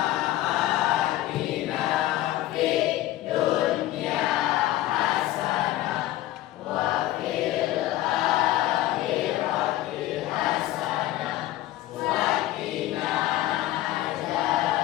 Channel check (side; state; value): right; quieter; 15.2 dB